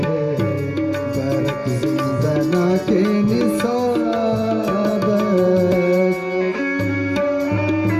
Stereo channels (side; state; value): both; identical; correlation 1.00